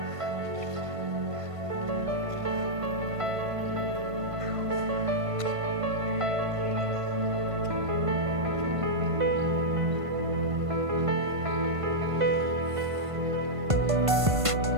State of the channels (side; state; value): left; late; 1.5 ms